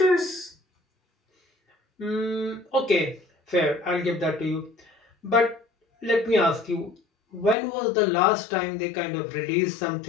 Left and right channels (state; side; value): drops out; right; at 7.6 s